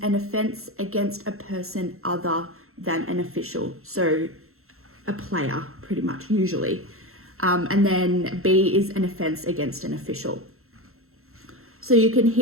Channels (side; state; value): left; late; 0.62 ms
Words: an offence against a person other than an official. So a player, pretty much, usually. And then B is an offence against an official. So you